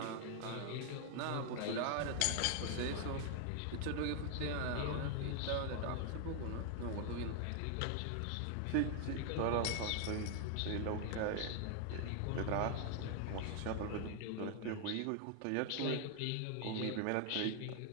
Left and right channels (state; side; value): different; both; correlation 0.00